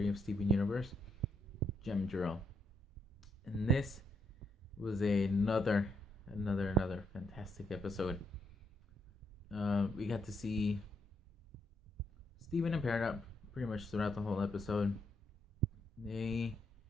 of Steven Universe, Gem Drill. And this was another fantastic episode. We got to see Steven and Peridot pretty much throughout the whole episode. They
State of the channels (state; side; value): normal; both; correlation 0.76